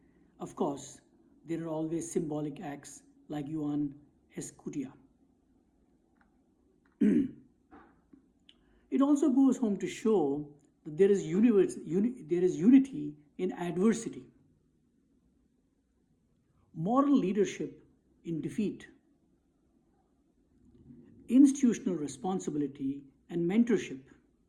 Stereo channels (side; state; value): both; identical; correlation 1.00